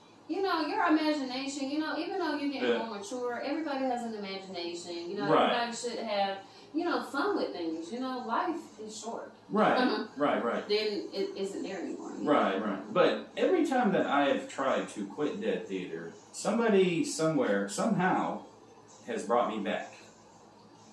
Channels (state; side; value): identical; both; correlation 1.00